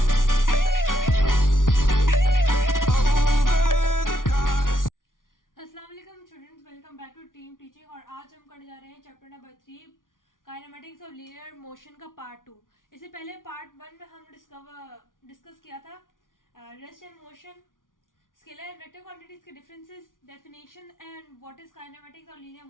अस्सलाम वालेकुम students, welcome back to team teaching. और आज हम करने जा रहे हैं chapter number 3 kinematics of linear motion का पार्ट 2। इससे पहले पार्ट 1 में हम डिस्कस किया था rest and motion, scalar and vector quantities के differences, definition and what is kinematics और लीनियर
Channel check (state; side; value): late; right; 0.89 ms